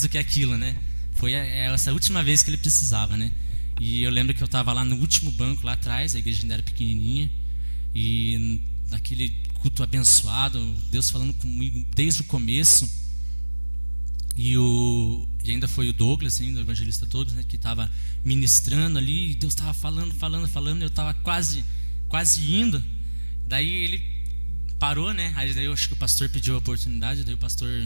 do que aquilo, né? Foi essa última vez que ele precisava, né? E eu lembro que eu estava lá no último banco, lá atrás, a igreja ainda era pequenininha. E naquele culto abençoado, Deus falando comigo desde o começo. E ainda foi o Douglas, o evangelista Douglas, né, que estava ministrando ali, e Deus estava falando, eu estava quase indo. Daí ele parou, né? Aí daí eu acho que o pastor pediu a oportunidade, daí o pastor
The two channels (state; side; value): inverted; both; correlation -1.00